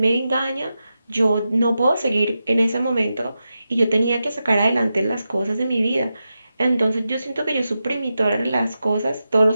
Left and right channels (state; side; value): inverted; both; correlation -0.90